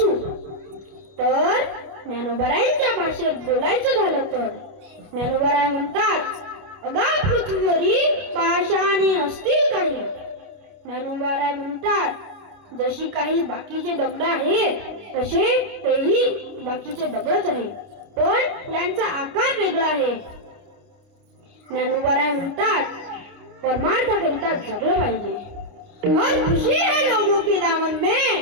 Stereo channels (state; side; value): late; left; 29 ms